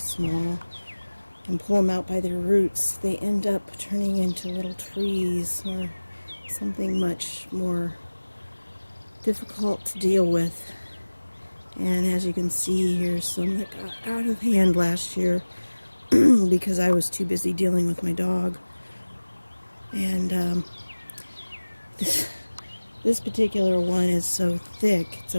and pull them out by their roots, they end up turning into little trees or something much more difficult to deal with. And as you can see, here's some that got out of hand last year because I was too busy dealing with my dog. And this particular one is so thick. It's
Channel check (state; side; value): inverted; both; correlation -1.00